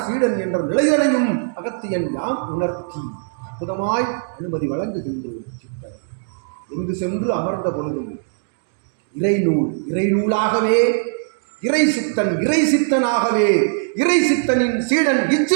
சீடன் என்ற நிலைதனையும் அகத்தியன் யாம் உணர்த்தி அற்புதமாய் அனுமதி வழங்குகின்றோம். சித்தன் எங்கு சென்று அமர்ந்த பொழுதும் இறைநூலாகவே, இறை சித்தனாகவே, இறை சித்தனின் சீடன்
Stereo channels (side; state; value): left; silent; digital silence